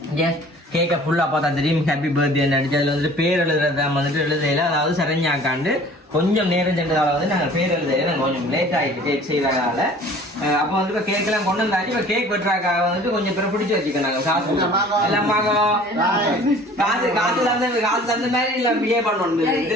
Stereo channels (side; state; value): both; normal; correlation 0.48